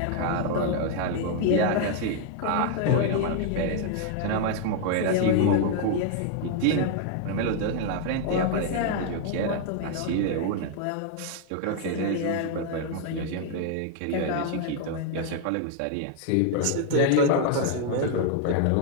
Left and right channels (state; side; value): different; both; correlation 0.00